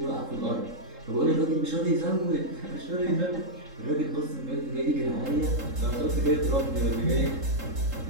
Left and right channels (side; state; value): left; late; 3.7 ms